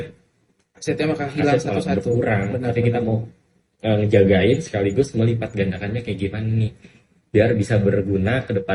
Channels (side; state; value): both; identical; correlation 1.00